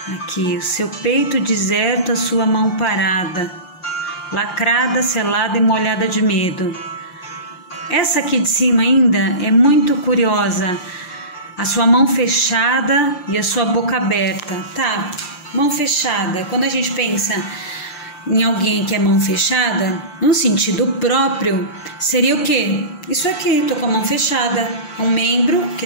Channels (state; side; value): late; right; 5.7 ms